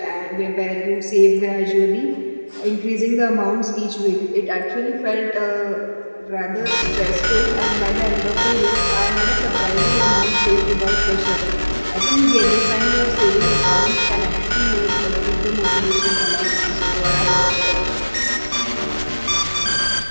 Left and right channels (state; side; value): inverted; both; correlation -1.00